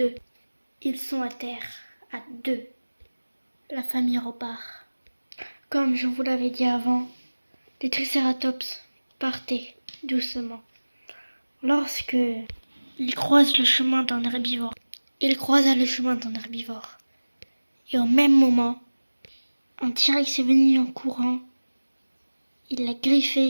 Ils sont à terre, à deux. La famille repart. Comme je vous l'avais dit avant, les tricératops partaient doucement. Lorsque ils croisent le chemin d'un herbivore, il croisa le chemin d'un herbivore. Et au même moment, un T-Rex est venu en courant. Il l'a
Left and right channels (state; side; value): inverted; both; correlation -1.00